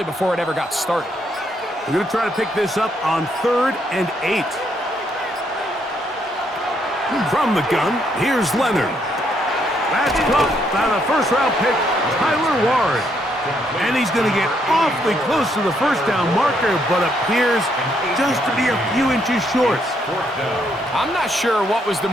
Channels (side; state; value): both; normal; correlation 0.73